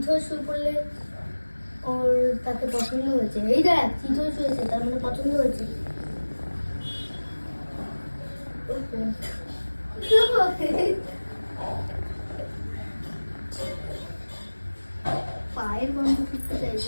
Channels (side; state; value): both; inverted; correlation -1.00